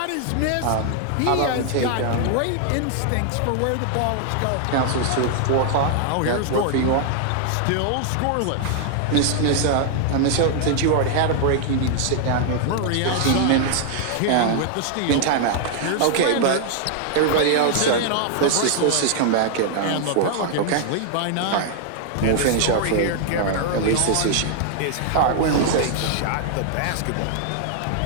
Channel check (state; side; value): different; both; correlation 0.00